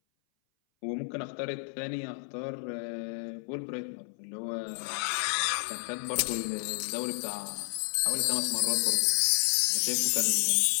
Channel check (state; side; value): silent; right; 57 dB below the other